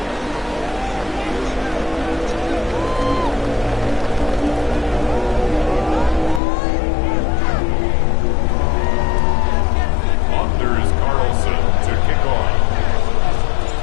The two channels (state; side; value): drops out; right; at 6.4 s